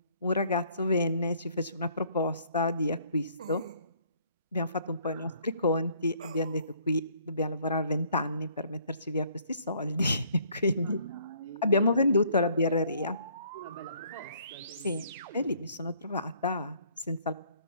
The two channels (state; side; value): inverted; both; correlation -0.62